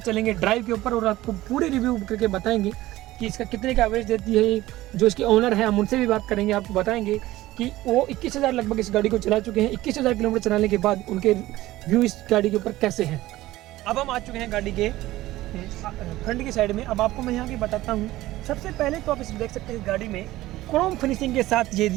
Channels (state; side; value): quieter; left; 16.7 dB